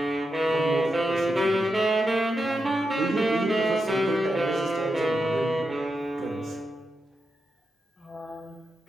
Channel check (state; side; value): normal; both; correlation 0.87